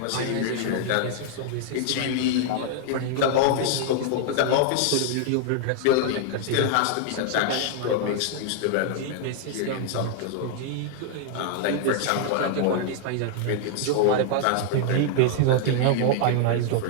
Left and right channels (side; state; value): both; different; correlation 0.00